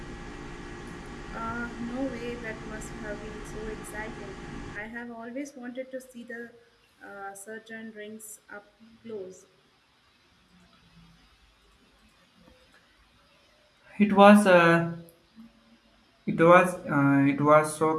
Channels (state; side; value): identical; both; correlation 1.00